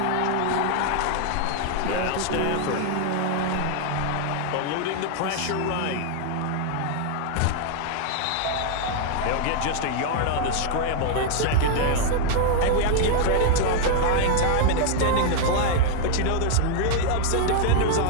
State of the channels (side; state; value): both; different; correlation 0.00